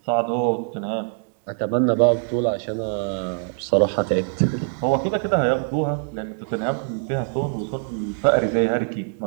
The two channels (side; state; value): left; silent; 63 dB below the other